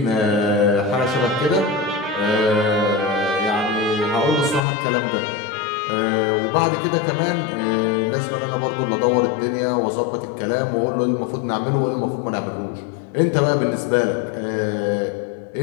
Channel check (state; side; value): drops out; right; at 4.6 s